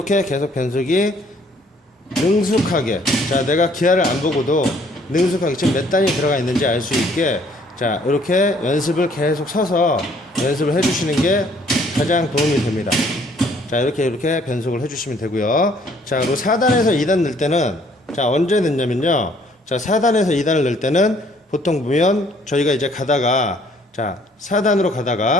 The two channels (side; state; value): both; normal; correlation 0.61